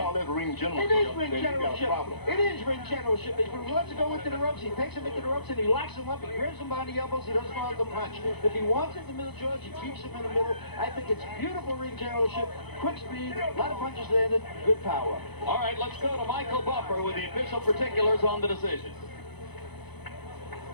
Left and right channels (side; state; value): right; late; 0.98 ms